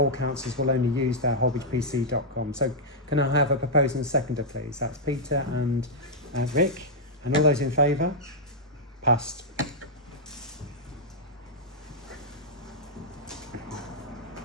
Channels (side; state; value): both; normal; correlation -0.07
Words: councillors will only use their holbeachpc.com. So can I have a proposer and a seconder, please? That's Peter and Rick. And all those in favour? Passed.